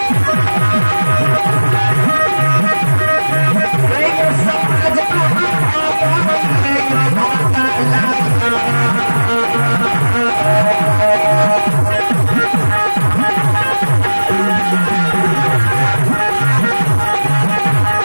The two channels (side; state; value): both; inverted; correlation -1.00